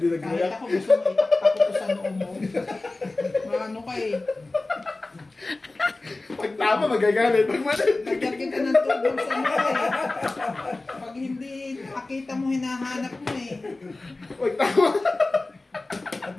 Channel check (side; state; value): right; quieter; 3.1 dB